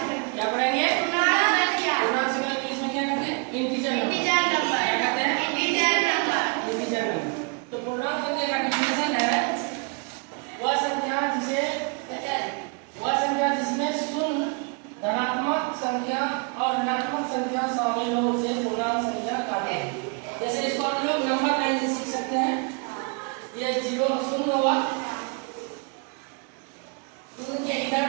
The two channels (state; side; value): quieter; left; 36.8 dB